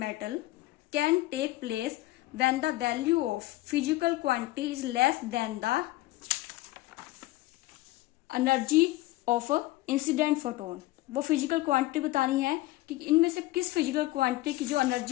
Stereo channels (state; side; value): quieter; right; 18.0 dB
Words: can take place when the value of physical quantity is less than the energy of incident photon. वो physical quantity बतानी है कि इनमें से किस physical quantity की जो